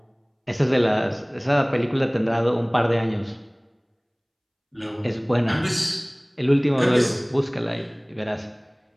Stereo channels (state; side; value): identical; both; correlation 1.00